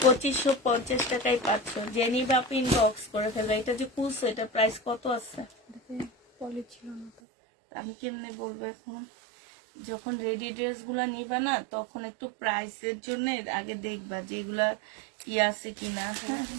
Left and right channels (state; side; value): drops out; left; at 7.1 s